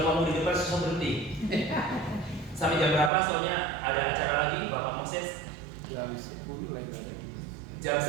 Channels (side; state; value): left; drops out; at 3.1 s